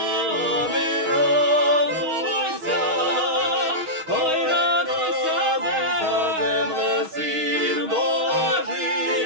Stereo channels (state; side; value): late; left; 6.3 ms